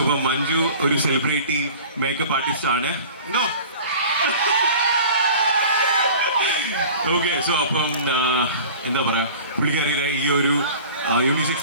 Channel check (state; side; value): inverted; both; correlation -0.41